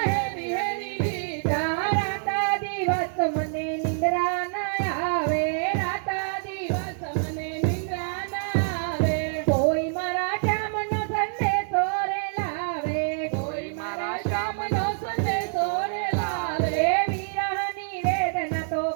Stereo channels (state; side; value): silent; left; 61 dB below the other